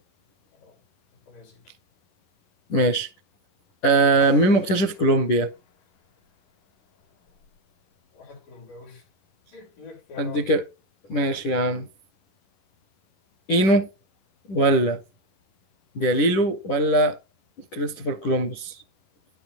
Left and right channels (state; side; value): late; right; 10 ms